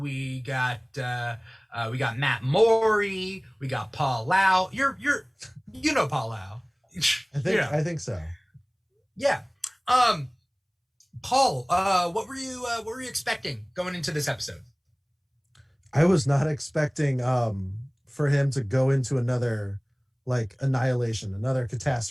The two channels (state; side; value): identical; both; correlation 1.00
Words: got Matt Morey. We got Paul Lau. You know Paul Lau. I think so. Yeah. Paul, what were you expecting going into this episode? I was not expecting for him to go into another annihilation, another